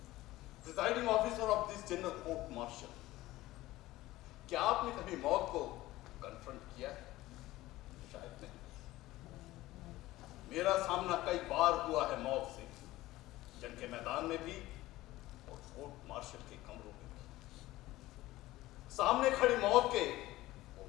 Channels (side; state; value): right; quieter; 17.2 dB